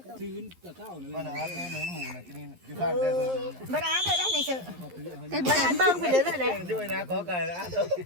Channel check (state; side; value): late; left; 11 ms